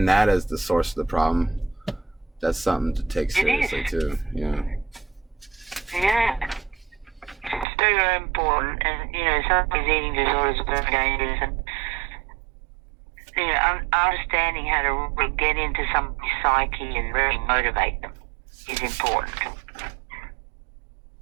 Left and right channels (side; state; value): left; drops out; at 7.7 s